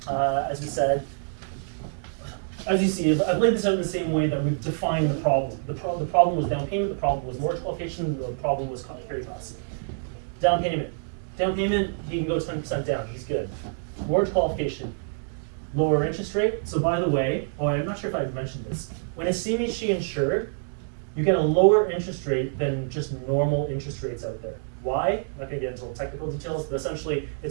As we said, as you see, I've laid this out in the same way that we've defined the problem. The problem was down payment, the problem was mortgage qualification, the problem was carry costs. Down payment, he can go 10% down, he's good. Mortgage qualification, lower interest rate. So by the way, I'm not sure if I've mentioned this, when it's CMHC insured, you get a lower interest rate than just normal interest rates out there. Why? I'm not going to get into all technical details, but essentially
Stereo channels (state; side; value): silent; left; digital silence